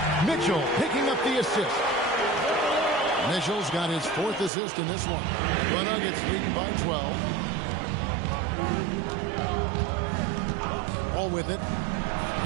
Mitchell picking up the assist. Mitchell's got his fourth assist in this one. The Nuggets leading by 12. All with it.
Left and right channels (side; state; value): left; drops out; at 4.5 s